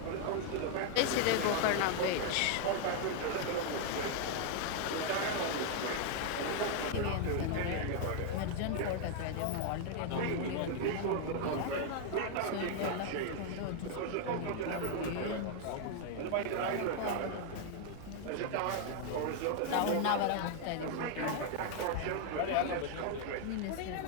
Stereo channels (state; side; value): different; both; correlation 0.00